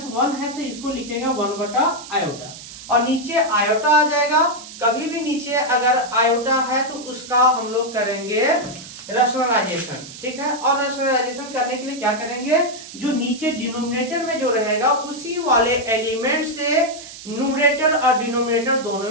है तो इसको लिखेंगे 1 बटा आयोटा, और नीचे आयोटा आ जाएगा। कभी भी नीचे अगर आयोटा है तो उसका हम लोग करेंगे रैशनलाइजेशन, ठीक है। और रैशनलाइजेशन करने के लिए क्या करेंगे, जो नीचे डिनोमिनेटर में जो रहेगा उसी वाले एलिमेंट से न्यूमरेटर और डिनोमिनेटर दोनों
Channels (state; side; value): noise; right; hiss, 14 dB below the sound